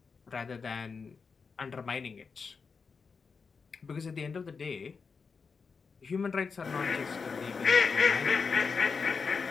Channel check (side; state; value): right; quieter; 5.2 dB